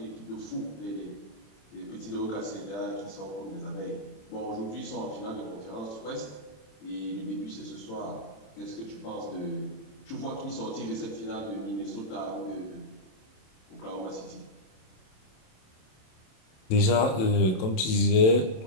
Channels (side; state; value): right; late; 27 ms